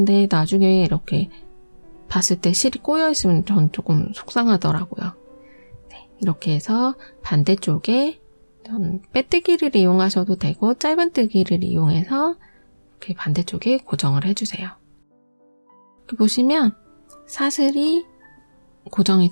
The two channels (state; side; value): inverted; both; correlation -1.00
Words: 나중에 이렇게 봤을 때 실이 꼬여있으면 전 조금 속상하더라고요. 네, 이렇게 해서 반대쪽에 빼뜨기를 이용하셔도 되고 짧은뜨기를 이용해서 이렇게 반대쪽에 고정을 해주세요. 이렇게 보시면 사슬이 고정이